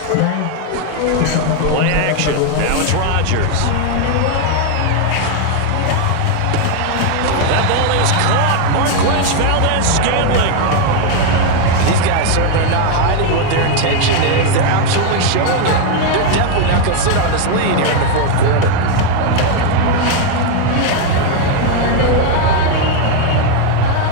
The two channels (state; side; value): different; both; correlation 0.01